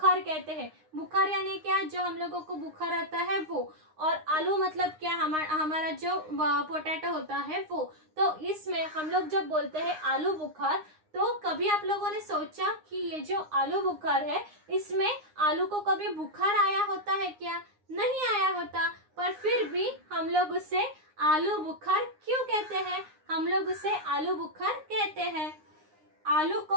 कहते हैं। बुखार यानी क्या? जो हम लोगों को बुखार आता है वो। और आलू मतलब क्या? हमारा जो पोटैटो होता है वो। तो इसमें हम लोग जब बोलते हैं आलू बुखार, तो कभी आप लोगों ने सोचा कि ये जो आलू बुखार है इसमें आलू को कभी बुखार आया होता है क्या? नहीं आया होता, पर फिर भी हम लोग उसे आलू बुखार क्यों कहते हैं? हम लोग उसे आलू बुखार कहते हैं। आलू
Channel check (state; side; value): late; left; 9.7 ms